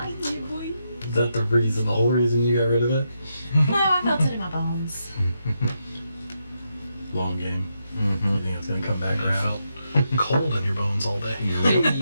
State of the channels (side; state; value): both; inverted; correlation -0.83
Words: boy. Is that the whole reason you got rid of it? No, I felt it in my bones. Long game. Mm-hmm. You think it's gonna come back You around? felt cold in your bones all day.